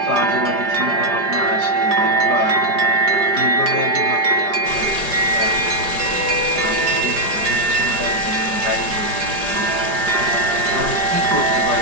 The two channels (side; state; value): left; late; 4.9 ms